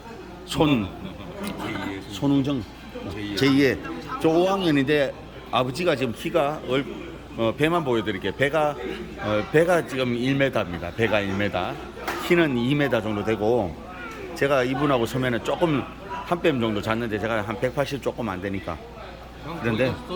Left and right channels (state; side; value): identical; both; correlation 1.00